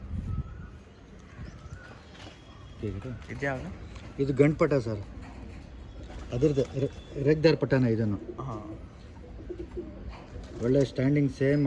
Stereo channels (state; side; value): identical; both; correlation 1.00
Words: ಇದ್ಯಾವುದು? ಇದು ಗಂಡು ಪಟ ಸರ್, ಅದ್ರದ್ದು ರೆಗ್ದಾರ್ ಪಟನ ಇದನ್ನು. ಹಾಂ, ಒಳ್ಳೆ ಸ್ಟ್ಯಾಂಡಿಂಗ್ ಸೇಮ್